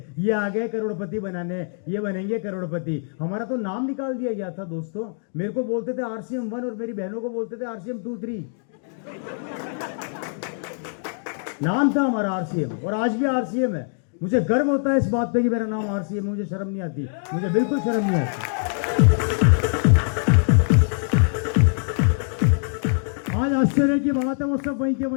ये आ गए करोड़पति बनाने, ये बनेंगे करोड़पति। हमारा तो नाम निकाल दिया गया था दोस्तों। मेरे को बोलते थे आरसीएम 1 और मेरी बहनों को बोलते थे आरसीएम 2, 3। नाम था हमारा आरसीएम, और आज भी आरसीएम है। मुझे गर्व होता है इस बात पे कि मेरा नाम आरसीएम, मुझे शर्म नहीं आती, मुझे बिल्कुल शर्म नहीं आती। आज आश्चर्य की बात है, वो सब वहीं के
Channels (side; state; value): right; silent; 63 dB below the other